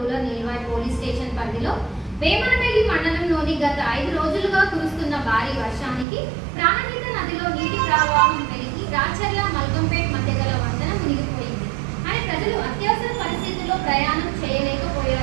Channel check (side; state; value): left; drops out; at 6.1 s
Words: Nilwai police station పరిధిలో వేమనపల్లి మండలంలోని గత 5 రోజులుగా కురుస్తున్న భారీ వర్షానికి ప్రాణహిత నదిలో నీటి ప్రవాహం పెరిగి రాచర్ల మల్కంపేట్ మధ్య గల వంతెన మునిగిపోయింది అని ప్రజలు అత్యవసర పరిస్థితుల్లో ప్రయాణం